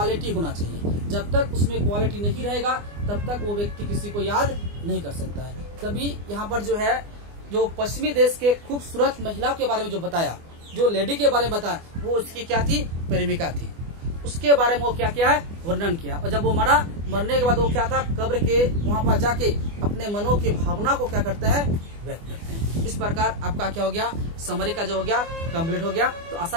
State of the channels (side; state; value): left; late; 24 ms